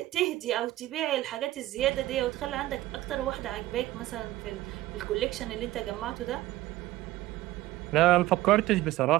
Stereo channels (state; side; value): quieter; left; 16.3 dB